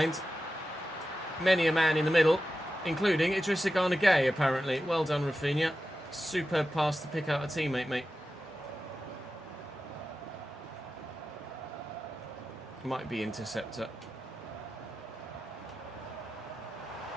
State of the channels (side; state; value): both; normal; correlation 0.92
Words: Many a man in the middle, including Idrissa Gana Gueye, apparently. Well done, Rafinha. Superb pass to pick out a teammate, mate. Might be interceptor.